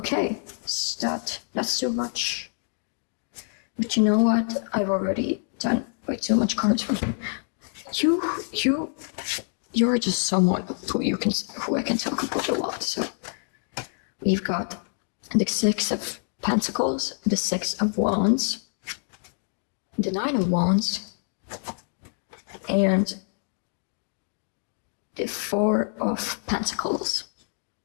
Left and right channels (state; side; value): silent; right; 61 dB below the other